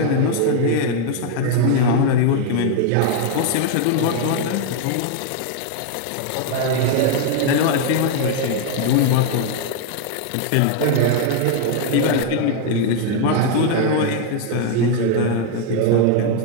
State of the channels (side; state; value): both; different; correlation 0.00